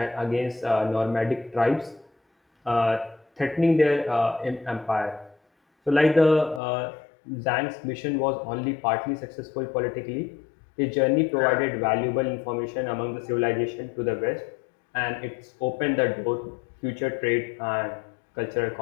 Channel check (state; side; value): drops out; right; at 6.6 s